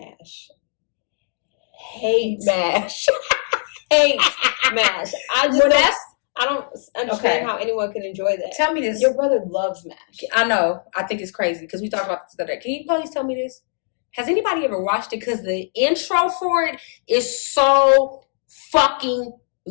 Hate MASH. Hate MASH. I don't understand how anyone can enjoy that. Tell me this. Your brother loves MASH. I know. I think it's crazy because we talked about this the other day. Can you please tell me this? Has anybody ever watched it? Because the intro for it is so fucking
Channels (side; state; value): right; silent; 65 dB below the other